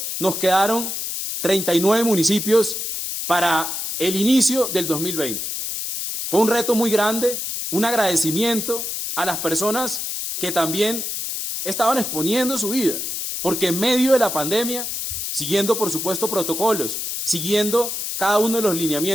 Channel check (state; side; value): noise; left; hiss, 4 dB below the sound